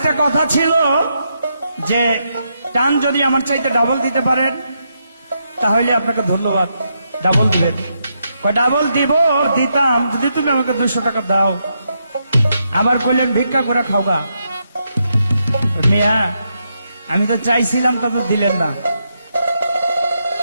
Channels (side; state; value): both; inverted; correlation -0.81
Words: কথা ছিল যে টান যদি আমার চাইতে ডাবল দিতে পারেন, তাহলে আপনাকে ধন্যবাদ, ডাবল দিবেন। ডাবল দিব, দিতাম যদি তুমি আমাকে 200 টাকা দাও। আবার কইলেন ভিক্ষা করে খাওগা। মিয়া, আমি তো চাইছিলাম, তবে দিলেন না।